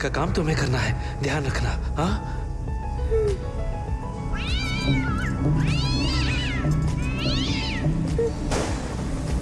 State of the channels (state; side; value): identical; both; correlation 1.00